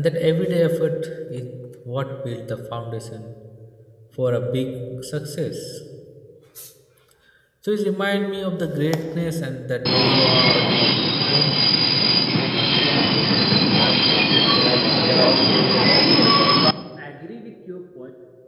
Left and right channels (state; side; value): identical; both; correlation 1.00